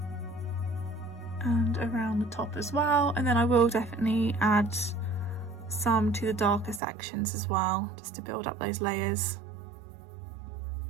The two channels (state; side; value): drops out; left; at 6.8 s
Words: And around the top as well, and then I will definitely add some to the darker sections as well, just to build up those layers.